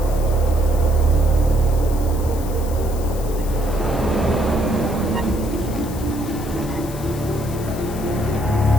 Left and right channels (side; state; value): left; noise; hiss, 16 dB below the sound